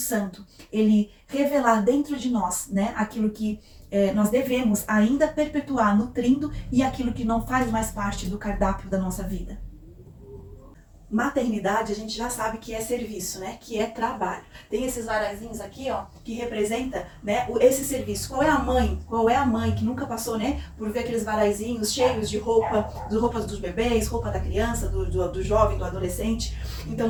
ele revelar dentro de nós, né, aquilo que nós devemos ainda perpetuar nutrindo e aquilo que não faz mais parte do cardápio da nossa vida. Maternidade a gente já sabe que é serviço, né? Que é trabalho. Tem esses varaizinhos aqui, ó, que representa, né, esse serviço. Qual é a mãe? Qual é a mãe que nunca passou, né, por ver aqueles varaizinhos cheios de roupas dos bebês, roupa da criança, do jovem, do adolescente? Então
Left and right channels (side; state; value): both; identical; correlation 1.00